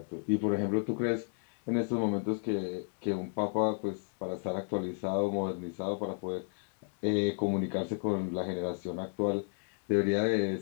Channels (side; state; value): right; silent; 55 dB below the other